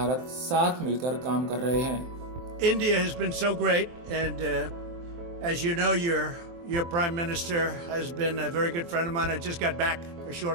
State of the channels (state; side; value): late; left; 23 ms